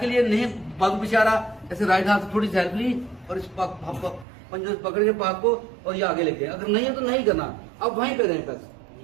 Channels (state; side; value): drops out; left; at 4.2 s